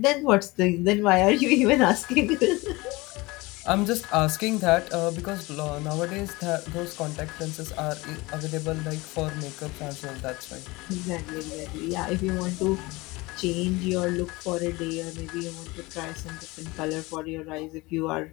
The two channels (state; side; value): quieter; right; 22.6 dB